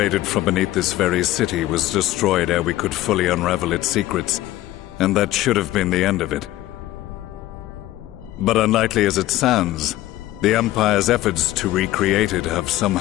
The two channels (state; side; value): quieter; right; 15.6 dB